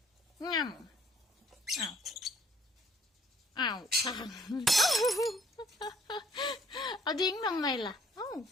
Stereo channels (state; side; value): normal; both; correlation 0.61